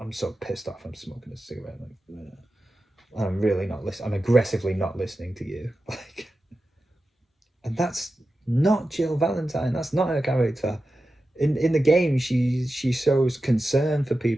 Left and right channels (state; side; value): normal; both; correlation 0.92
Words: so pissed off I'm smoking a cigarette. Like, I'm really not listening. I'm aggressively not listening to you. Like, and that's not Jill Valentine. That's not her character. In the game, she shows concern for